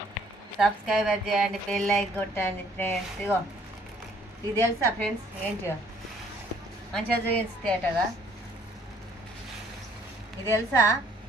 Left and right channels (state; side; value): normal; both; correlation 0.60